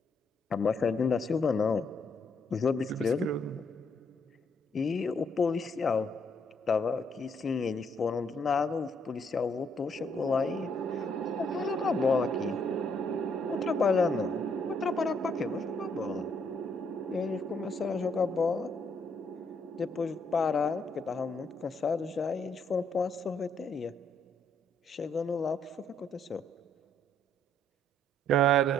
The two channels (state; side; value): normal; both; correlation 0.71